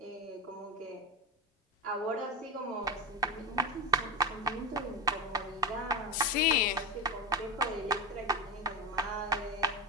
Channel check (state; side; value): normal; both; correlation 0.18